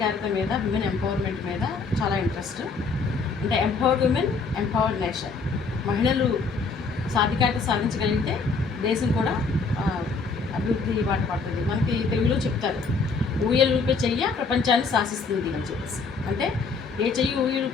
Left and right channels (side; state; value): right; quieter; 4.5 dB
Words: మీద, విమెన్ ఎంపవర్మెంట్ మీద చాలా ఇంట్రెస్ట్. అంటే ఎంపవర్డ్ విమెన్, ఎంపవర్డ్ నేషన్. మహిళలు సాధికారత సాధించగలిగితే దేశం కూడా అభివృద్ధి బాట పడుతుంది. మనకి తెలుగులో చెప్తారు, ఊయలు ఊపే చెయ్య ప్రపంచాన్ని శాసిస్తుంది అని చెప్పేసి. అంటే ఏ చెయ్యి